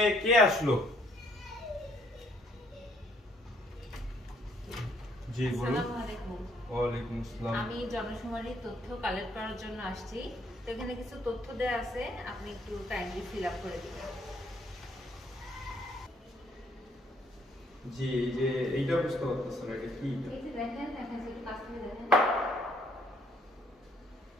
কে আসলো? জি বলুন। আসসালামু আলাইকুম। ওয়ালাইকুম আসসালাম। আমি জনশুমারির তথ্য কালেক্ট করার জন্য আসছি। তো এখানে কিছু তথ্য দেয়া আছে, আপনি একটু কাইন্ডলি ফিল আপ করে দিবেন। জি, এই যে এইটা বুঝতে পারতেছেন না, এটা কি? এই যে দেখেন, একটু কাছ থেকে দেখেন।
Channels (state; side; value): normal; both; correlation 0.67